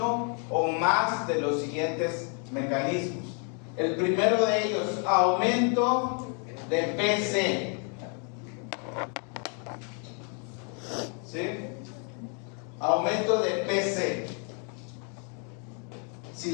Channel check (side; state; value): right; quieter; 39.9 dB